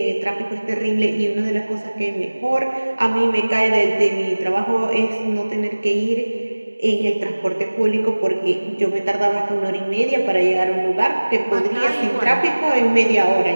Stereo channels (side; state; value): both; inverted; correlation -1.00